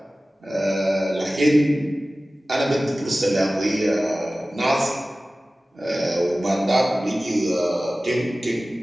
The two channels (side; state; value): both; normal; correlation 0.97